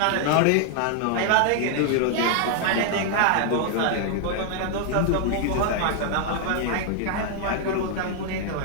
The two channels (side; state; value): both; different; correlation 0.00